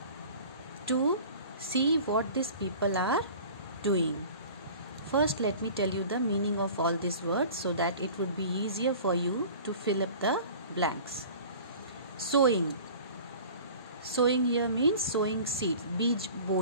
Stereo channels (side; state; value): both; inverted; correlation -0.43